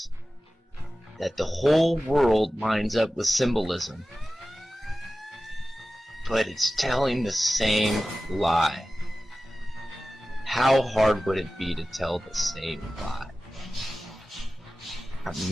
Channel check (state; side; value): normal; both; correlation 0.96